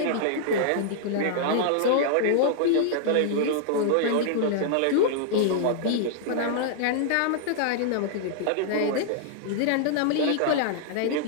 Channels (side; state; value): both; different; correlation -0.01